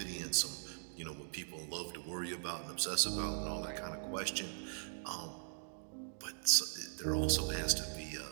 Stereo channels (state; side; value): silent; left; digital silence